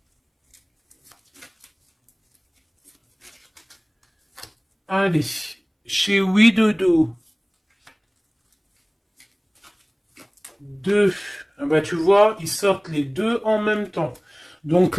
Allez, chez Widodo. 2. Ah bah, tu vois, ils sortent les deux en même temps. Donc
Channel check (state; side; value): identical; both; correlation 1.00